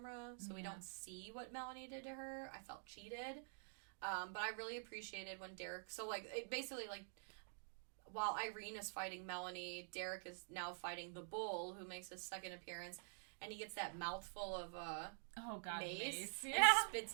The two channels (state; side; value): silent; left; digital silence